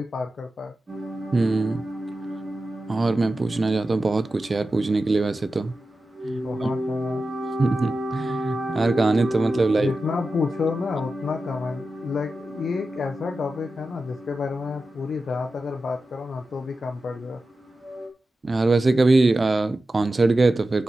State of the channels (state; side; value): normal; both; correlation 0.92